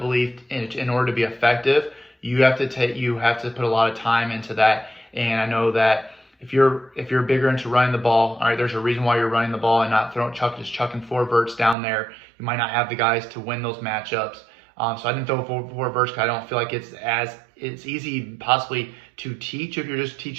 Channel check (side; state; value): left; drops out; at 11.8 s